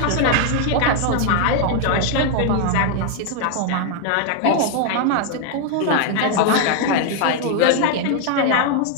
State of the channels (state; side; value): different; both; correlation 0.00